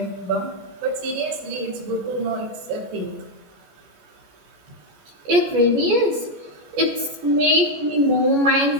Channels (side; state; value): left; late; 14 ms